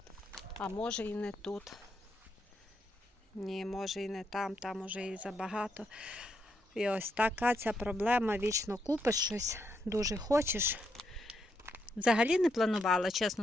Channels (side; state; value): both; normal; correlation 0.79